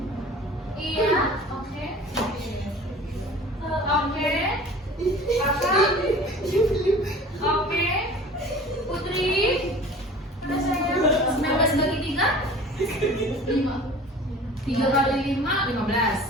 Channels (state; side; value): normal; both; correlation 0.43